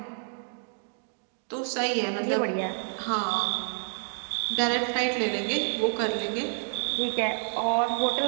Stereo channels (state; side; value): silent; left; digital silence